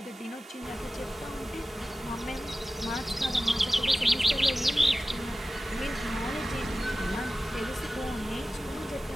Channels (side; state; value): both; normal; correlation 0.95